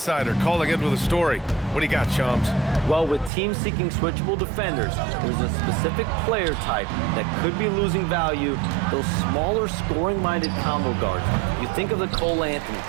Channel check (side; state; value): left; drops out; at 3.3 s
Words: calling in with a story. What do you got, Shams? Well, with teams seeking switchable defenders, there's a specific player type that could be losing value, those smaller scoring-minded combo guards. You think of the Cole Anthony,